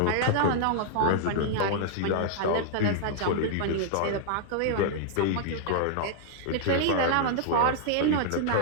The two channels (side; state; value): both; different; correlation -0.01